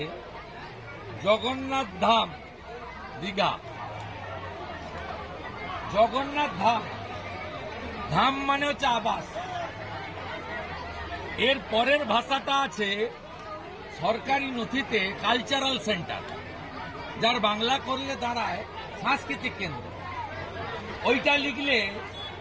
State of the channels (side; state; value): both; identical; correlation 1.00